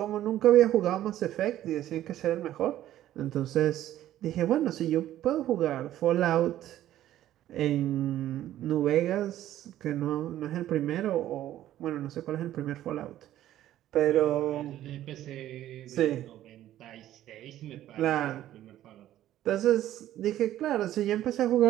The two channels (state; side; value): quieter; left; 13.0 dB